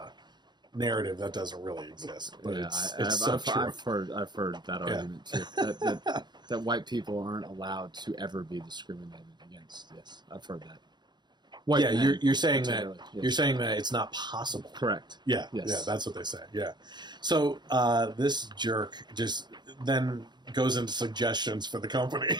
narrative that doesn't really exist. But it's so true. I've heard that argument too. That white people aren't allowed to ever be discriminated against. Yes, I've heard that. You're saying that you're saying that it's not possible. Correct. Yeah, that's what they say. Yeah. So this jerk just then goes into suggestions for the company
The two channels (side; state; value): left; late; 0.21 ms